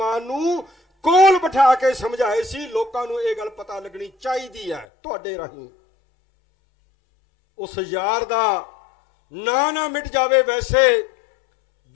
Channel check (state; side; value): drops out; right; at 4.9 s